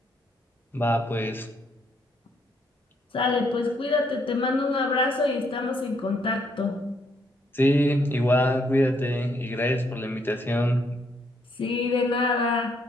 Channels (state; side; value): normal; both; correlation 0.72